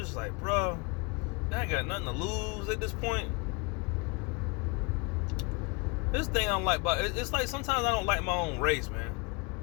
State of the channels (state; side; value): quieter; right; 29.9 dB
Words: like, bro, I ain't got nothing to lose at this point. This thing I don't like about it's like sometimes I don't like my own race, man.